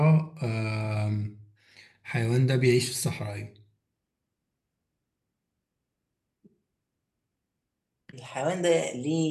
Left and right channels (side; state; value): both; identical; correlation 1.00